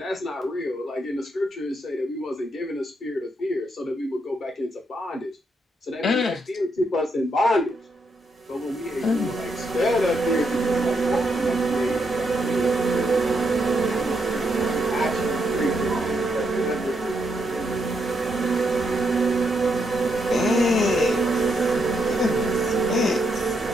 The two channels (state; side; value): normal; both; correlation 0.79